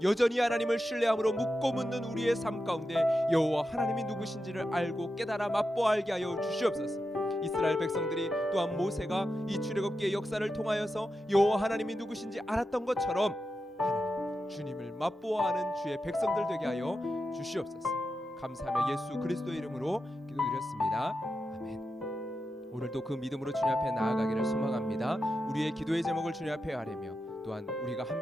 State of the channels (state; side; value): normal; both; correlation 0.89